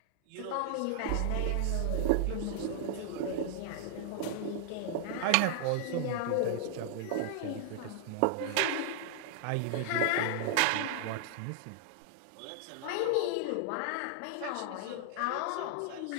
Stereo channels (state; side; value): different; both; correlation -0.01